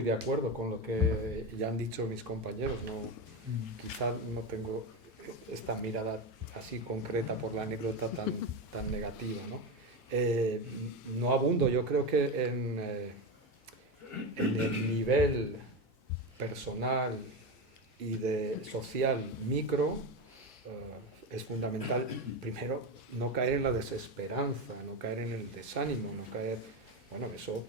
acuerdo con lo que ya han dicho mis compañeros. No, quizá no tengo esta mirada así concreta por la anécdota tan negativa, ¿no? No abundo, yo creo que en el nivel personal y de social micro es fundamental, primero, no caer en la desesperanza, no caer en el desánimo, no caer, bueno, eso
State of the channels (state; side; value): normal; both; correlation 0.17